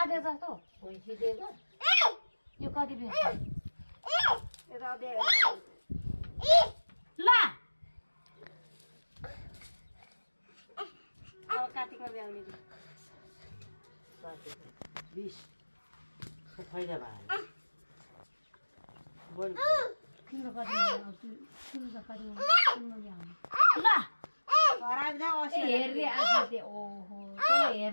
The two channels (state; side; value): inverted; both; correlation -1.00